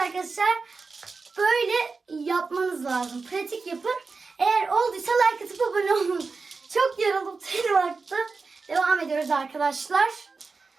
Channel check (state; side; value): quieter; left; 4.4 dB